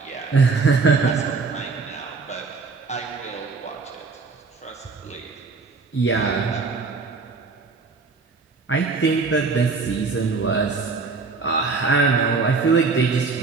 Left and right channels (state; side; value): quieter; left; 4.4 dB